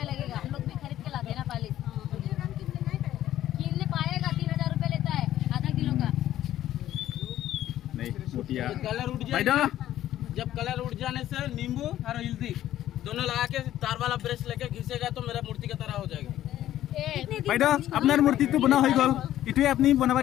लगेगा हम लोग भी खरीद के लाते हैं ना पालिश किनने पाएगा 3000 रुपया लेता है आधा किलो का नहीं मोतिया कलर उड़ जाए जब कलर उड़ जाने से नींबू और हल्दी दोनों लगा के तार वाला ब्रश लेके घिसेगा तो मेरा मूर्ति की तरह हो जाएगा বাইদেউ আপনার মূর্তিটো বনা হৈ গল ইটোৱে আপনি বনাবা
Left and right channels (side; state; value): right; quieter; 12.8 dB